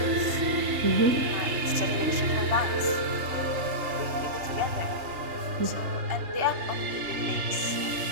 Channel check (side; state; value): left; late; 3.3 ms